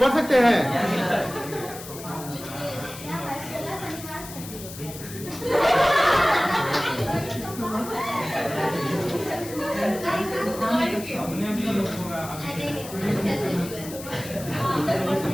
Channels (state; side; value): noise; left; hiss, 13 dB below the sound